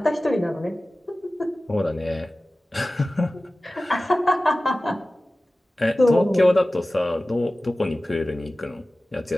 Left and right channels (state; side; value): normal; both; correlation 0.97